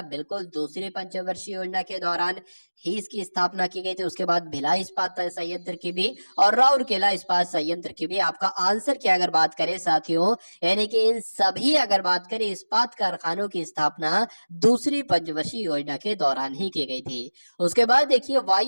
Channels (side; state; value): both; inverted; correlation -1.00